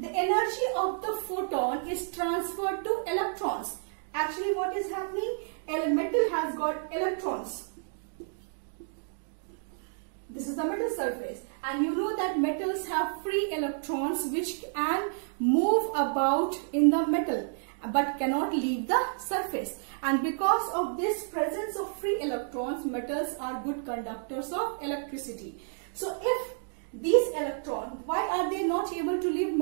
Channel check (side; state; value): left; silent; digital silence